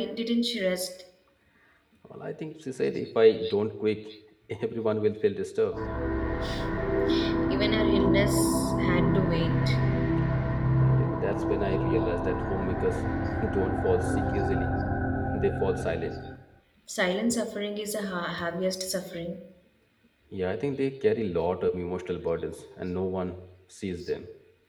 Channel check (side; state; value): both; identical; correlation 1.00